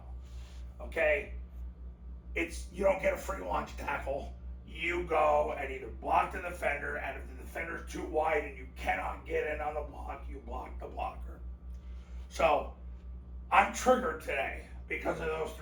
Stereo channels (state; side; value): identical; both; correlation 1.00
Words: Okay? You don't get a free lunch tackle. You go and either block the defender, and if the defender's too wide and you cannot get in on the block, you block the blocker. So, I'm triggered today because of those